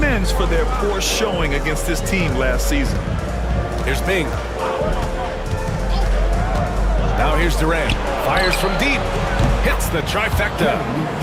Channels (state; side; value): identical; both; correlation 1.00